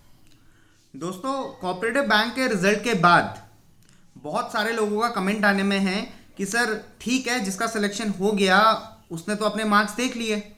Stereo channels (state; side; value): identical; both; correlation 1.00